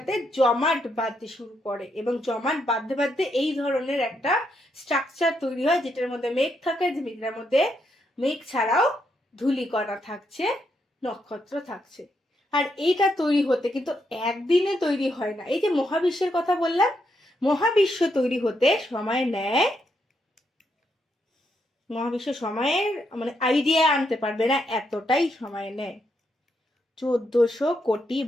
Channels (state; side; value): normal; both; correlation 0.79